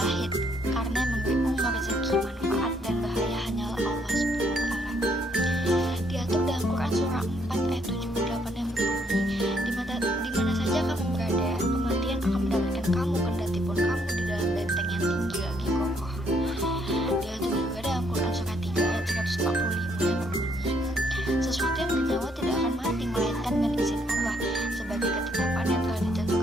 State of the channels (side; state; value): both; normal; correlation 0.70